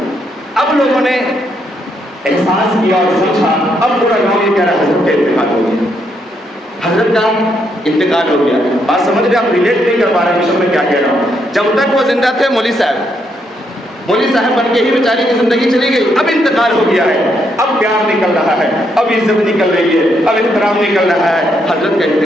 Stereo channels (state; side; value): normal; both; correlation 0.76